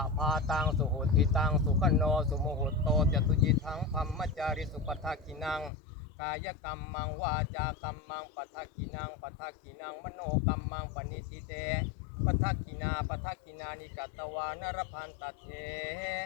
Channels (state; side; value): drops out; right; at 5.7 s